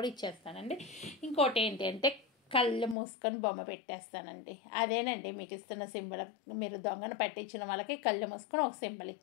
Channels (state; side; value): drops out; right; at 3.0 s